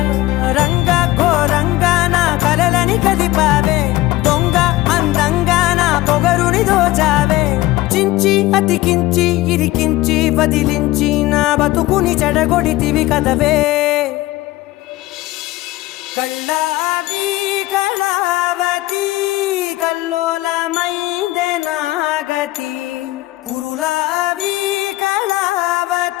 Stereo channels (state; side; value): quieter; right; 18.0 dB